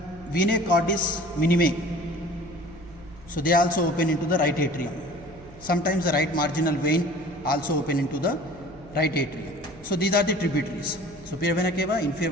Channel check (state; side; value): noise; right; hum, 21 dB below the sound